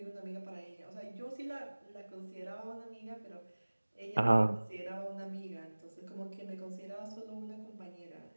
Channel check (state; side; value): inverted; both; correlation -1.00